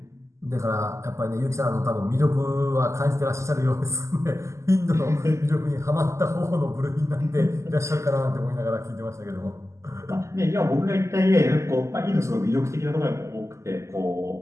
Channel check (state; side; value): late; left; 0.14 ms